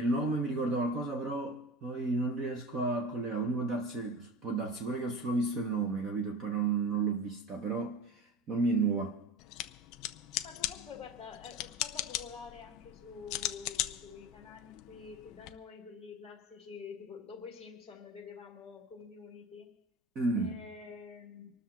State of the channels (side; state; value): both; normal; correlation 0.32